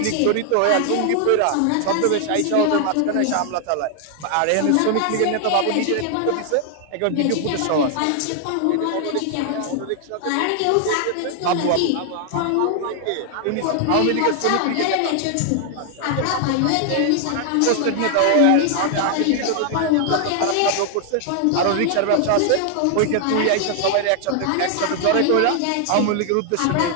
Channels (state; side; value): different; both; correlation 0.00